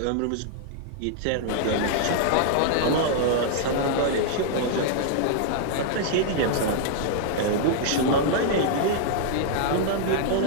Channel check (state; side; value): different; both; correlation -0.01